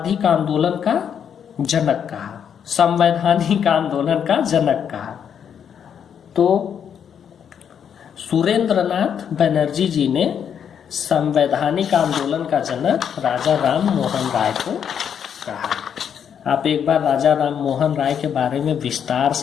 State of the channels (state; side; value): quieter; right; 8.1 dB